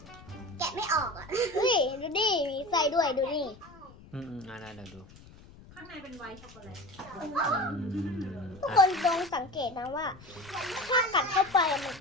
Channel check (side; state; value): left; noise; rumble, 21 dB below the sound